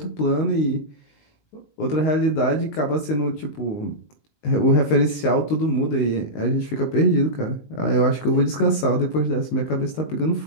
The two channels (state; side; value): late; right; 19 ms